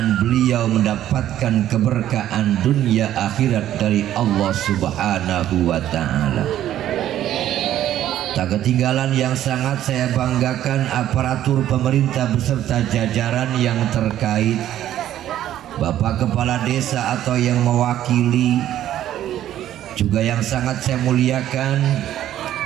beliau mendapatkan keberkahan dunia akhirat dari Allah Subhanahu wa ta'ala. Tak ketinggalan yang sangat saya banggakan aparatur pemerintah beserta jajaran yang terkait, Bapak Kepala Desa atau yang mewakili. Juga yang sangat saya muliakan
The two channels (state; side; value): quieter; left; 12.1 dB